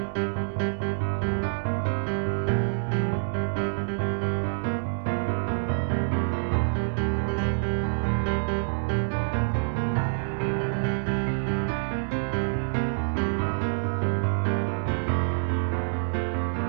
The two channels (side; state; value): left; silent; digital silence